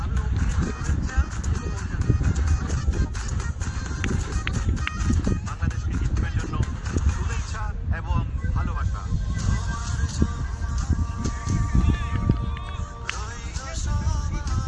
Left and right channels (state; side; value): identical; both; correlation 1.00